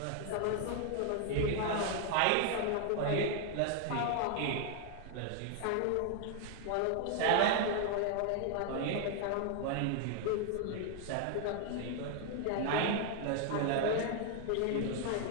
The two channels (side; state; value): both; different; correlation 0.00